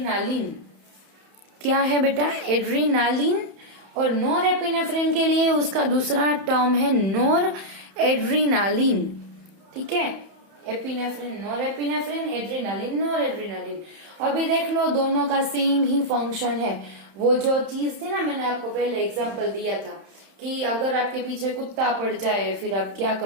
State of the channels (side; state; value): left; late; 31 ms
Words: क्या है बेटा, एड्रीनालिन, और नोरेपिनेफ्रिन के लिए उसका दूसरा टर्म है नोर एड्रीनालिन, ठीक है। एपिनेफ्रिन, नोरेपिनेफ्रिन, एड्रीनालिन, नोर एड्रीनालिन। अभी देख लो दोनों का सेम ही फंक्शन है। वो जो चीज थी ना, मैंने आपको पहले एग्जांपल दिया था कि अगर आपके पीछे कुत्ता पड़ जाए फिर आप क्या